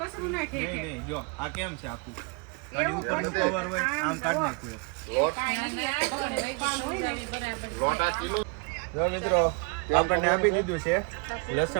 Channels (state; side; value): quieter; left; 31.2 dB